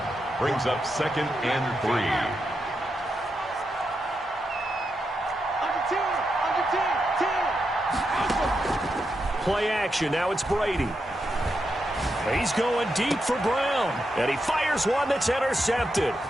Brings up 2nd and 3. Play action. Now it's Brady. He's going deep for Brown. And he fires one that's intercepted.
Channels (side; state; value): both; normal; correlation 0.85